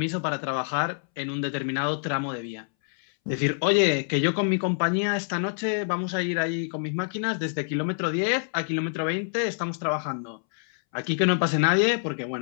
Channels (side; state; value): right; silent; 61 dB below the other